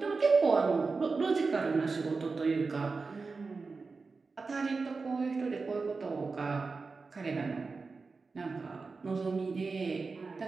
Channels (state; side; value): quieter; left; 4.3 dB